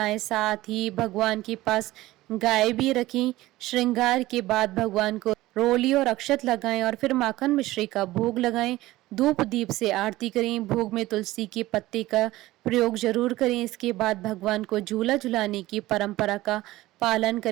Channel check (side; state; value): left; quieter; 17.3 dB